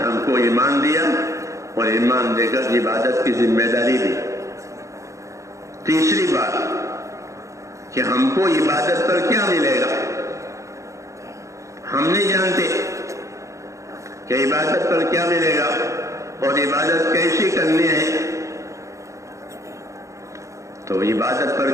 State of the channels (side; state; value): left; late; 0.15 ms